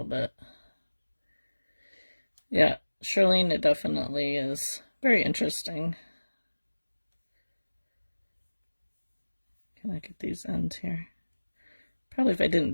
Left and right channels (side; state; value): both; inverted; correlation -1.00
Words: bit. Yeah, Charlene, it definitely is very interesting. Can I get these ends here? Probably if I didn't